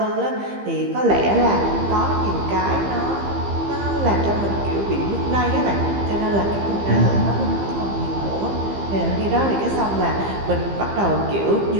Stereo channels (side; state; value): left; late; 15 ms